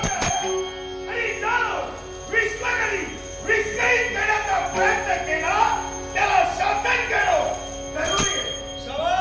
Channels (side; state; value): both; identical; correlation 1.00